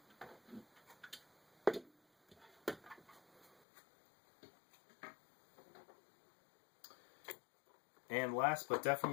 And last but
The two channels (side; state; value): right; drops out; at 3.6 s